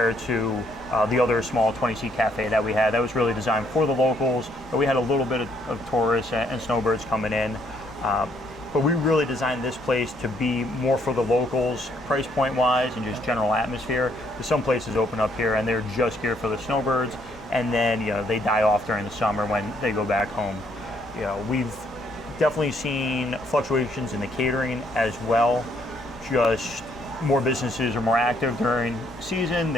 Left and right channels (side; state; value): both; normal; correlation 0.69